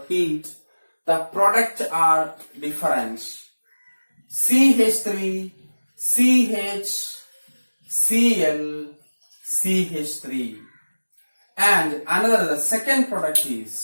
heat, the products are different. CH3, CH, Cl, CH3. And another, the second product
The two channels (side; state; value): both; inverted; correlation -1.00